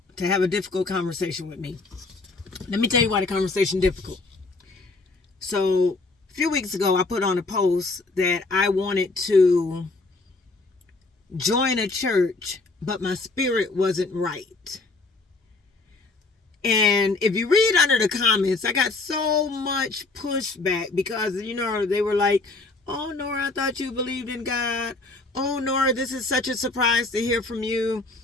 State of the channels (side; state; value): right; quieter; 3.4 dB